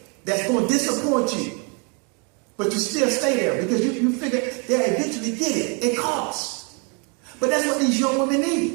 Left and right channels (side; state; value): left; quieter; 35.0 dB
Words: that's going to disappoint you, but you still stay there because you figure they'll eventually get it. It costs. But that's what these young women